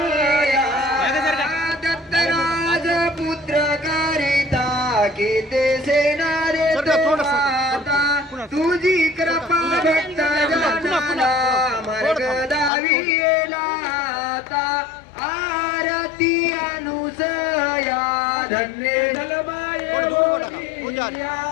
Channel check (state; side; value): drops out; right; at 12.7 s